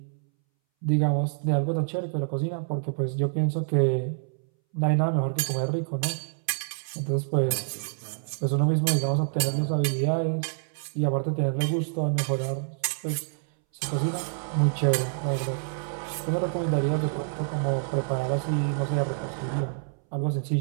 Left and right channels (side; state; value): left; silent; 60 dB below the other